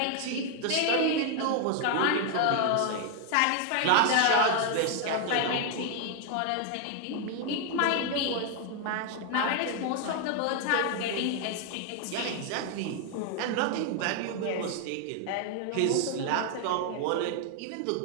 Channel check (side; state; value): both; different; correlation 0.00